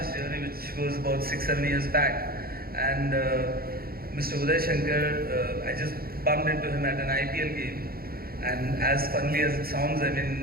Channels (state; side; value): late; left; 0.44 ms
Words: journey, which was about 6, 7 years back. And Mr. Uday Shankar, I just bumped into him at an IPL game. And as funnily as it sounds, I